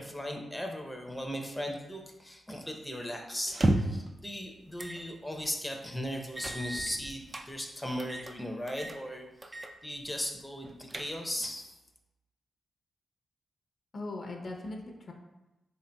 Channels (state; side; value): normal; both; correlation 0.92